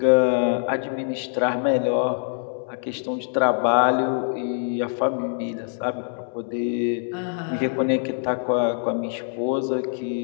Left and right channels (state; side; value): silent; right; digital silence